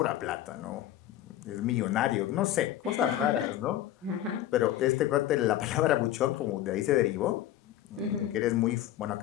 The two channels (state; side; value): quieter; right; 12.8 dB